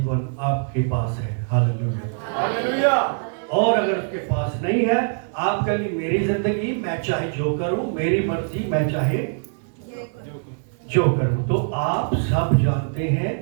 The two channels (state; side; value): silent; left; 63 dB below the other